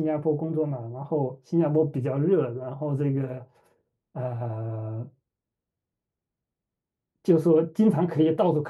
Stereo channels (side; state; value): both; identical; correlation 1.00